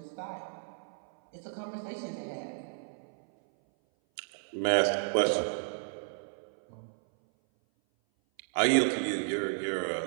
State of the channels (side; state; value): left; silent; 56 dB below the other